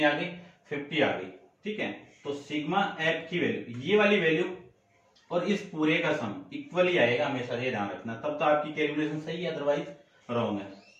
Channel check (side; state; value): both; identical; correlation 1.00